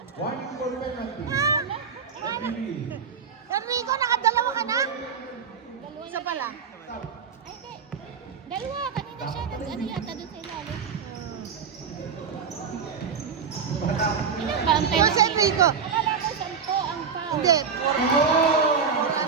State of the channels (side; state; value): left; quieter; 6.2 dB